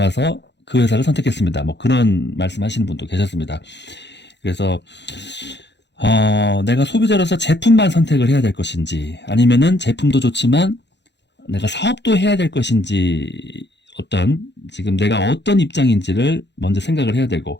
그 회사를 선택했습니다. 뭐 그런 말씀하시는 분도 계셨습니다. 그래서 내가 소비자로서 제품만 선택을 해야 될 것인지 아니면은 제품도 좋지만 내가 사업도 해야 될 것인지 지금 내가 어떤 입장인지를 먼저 생각을 해야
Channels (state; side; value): late; right; 0.51 ms